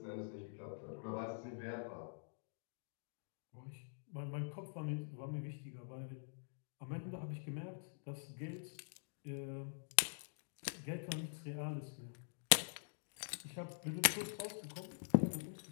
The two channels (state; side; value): silent; right; digital silence